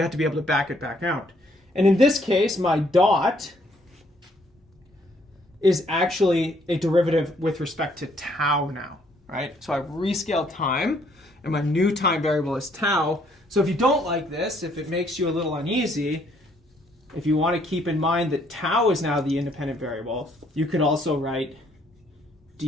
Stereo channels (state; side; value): normal; both; correlation 0.67